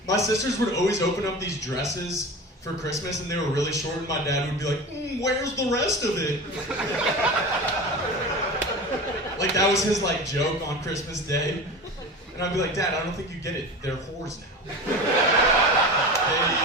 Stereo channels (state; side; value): normal; both; correlation 0.30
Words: My sisters would always open up these dresses for Christmas, and they were really short, and my dad would be like, where's the rest of it? Like, that was his, like, joke on Christmas Day. And I'd be like, Dad, I don't think you get it. They're whores now.